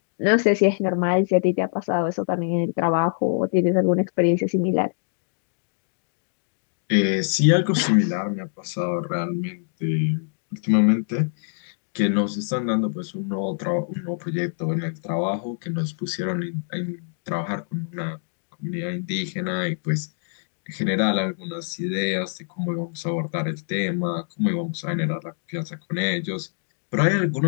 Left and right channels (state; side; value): silent; right; digital silence